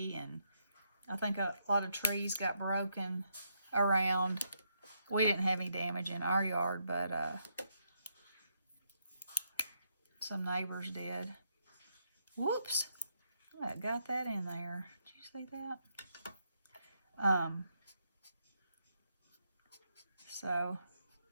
and I think a lot of trees got broken around. We didn't have any damage in our yard, but some neighbors did. Whoops! I got that in there. Did you see that? So,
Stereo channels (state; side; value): inverted; both; correlation -0.78